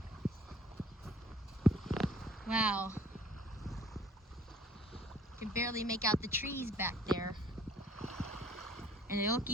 Wow. You can barely make out the trees back there. And they look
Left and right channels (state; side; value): normal; both; correlation 0.56